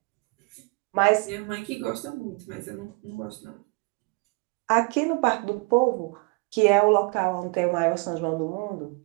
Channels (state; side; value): quieter; left; 30.8 dB